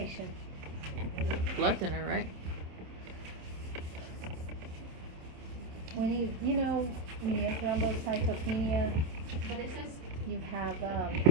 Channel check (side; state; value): left; late; 27 ms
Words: Blood thinner, right? When when you have thrombocytopenia, But it says you have